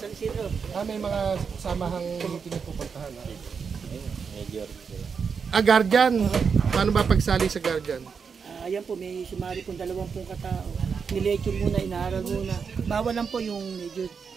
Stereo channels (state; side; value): quieter; left; 6.0 dB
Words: San Isidro. May mga samahang meeting na pupuntahan. Guardian. Paano ba pagsali sa Guardian? Ayan po, may sumari pong 20 katao. Nilecture muna, inaaral muna. Bawal lang po yung medyo